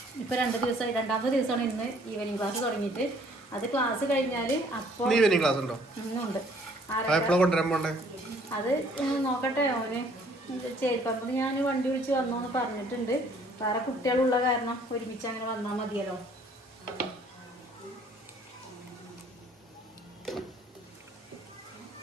ഇപ്പോൾ 2 ദിവസമായി, 2ാമത്തെ ദിവസമാണ് ഇന്ന് ഈവനിങ് ക്ലാസ് തുടങ്ങിയിട്ട്. അത് ക്ലാസ് കഴിഞ്ഞാൽ അപ്പോൾ ഈവനിങ് ക്ലാസ് ഉണ്ടോ? ഇന്നുണ്ട്. അത് നോക്കട്ടെ. അവന് ചേരിപ്പറമ്പ് ഞാൻ വണ്ടി വിളിച്ച് വന്നോന്ന് പറഞ്ഞിട്ടുണ്ട്. വേറെ കുട്ടികളുള്ള കാരണം ഒരുമിച്ച് അങ്ങനെ വന്നാൽ മതിയല്ലോ.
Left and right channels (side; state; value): both; normal; correlation 0.59